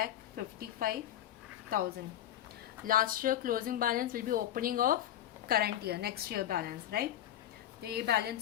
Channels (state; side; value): quieter; right; 11.9 dB